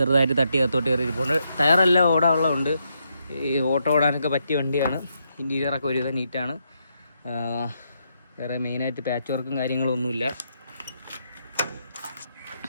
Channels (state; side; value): inverted; both; correlation -0.80